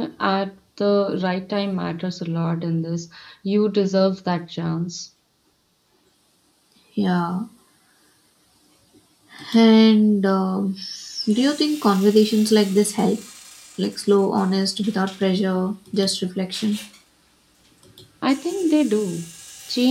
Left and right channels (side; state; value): both; identical; correlation 1.00